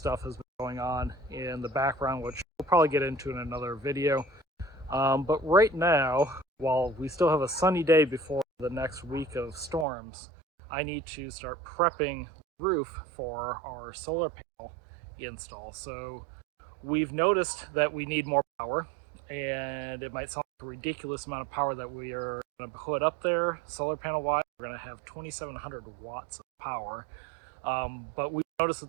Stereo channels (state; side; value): drops out; left; at 9.9 s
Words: has been going on in the background, which we'll probably get into in another video. But right now, while we still have a sunny day before the next week of storms, I need to start prepping the roof for our solar panel install. So we've noticed that we need more power, and it might sound like a ridiculous amount of power that we are going to put up there solar panel wise. We're going to have 2,700 watts of power, but we noticed